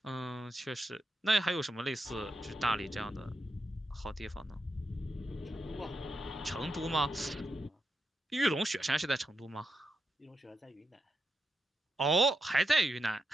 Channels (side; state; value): both; normal; correlation 0.84